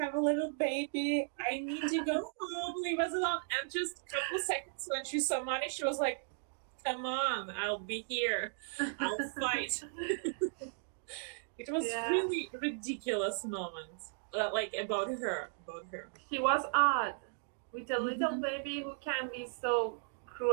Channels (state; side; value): silent; left; digital silence